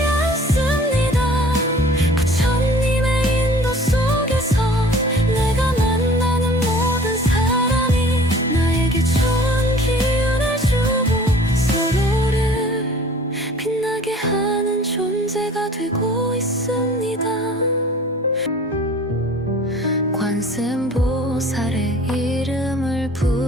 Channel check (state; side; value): normal; both; correlation 0.48